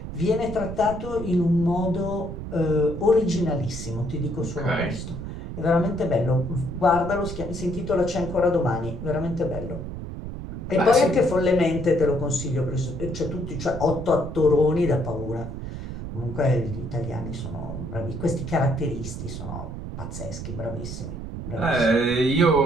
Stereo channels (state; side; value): noise; right; rumble, 8 dB below the sound